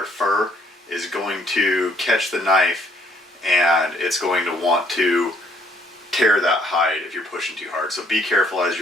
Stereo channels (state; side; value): normal; both; correlation 0.66